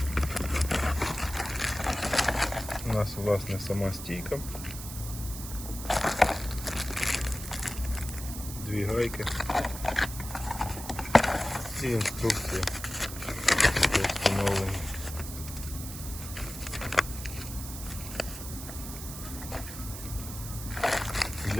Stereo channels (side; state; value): right; noise; hiss, 10 dB below the sound